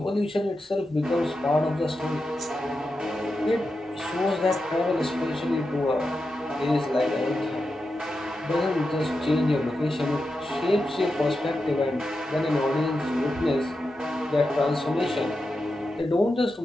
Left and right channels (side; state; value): both; normal; correlation 0.89